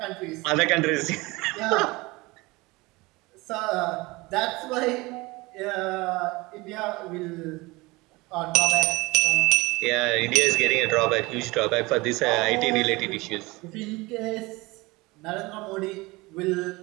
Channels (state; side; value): quieter; left; 22.8 dB